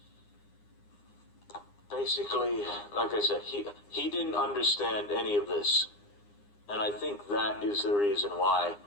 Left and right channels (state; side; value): late; right; 9.8 ms